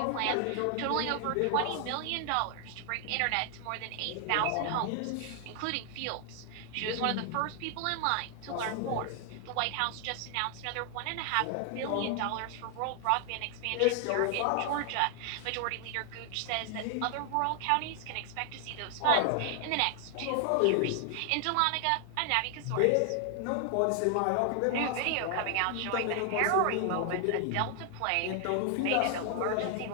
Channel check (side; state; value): both; different; correlation 0.00